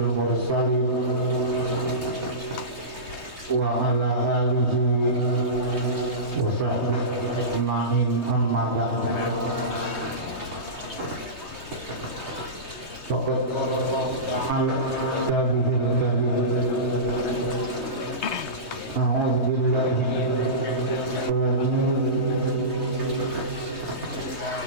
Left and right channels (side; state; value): right; late; 3.2 ms